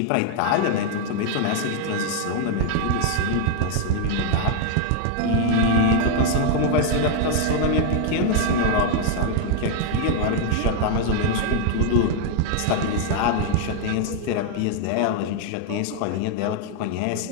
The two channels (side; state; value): both; different; correlation 0.00